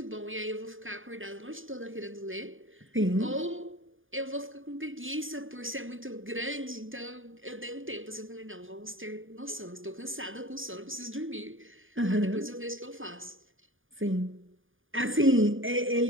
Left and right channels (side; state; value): left; late; 0.58 ms